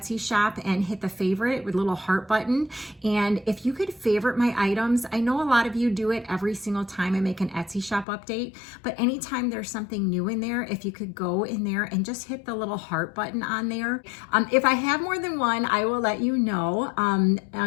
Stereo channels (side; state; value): right; drops out; at 8.1 s